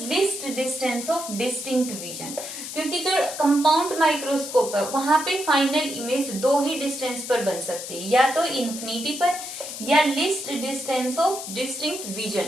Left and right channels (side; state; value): left; noise; hiss, 8 dB below the sound